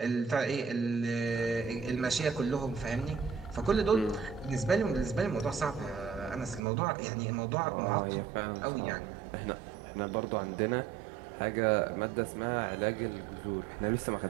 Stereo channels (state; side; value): drops out; left; at 6.6 s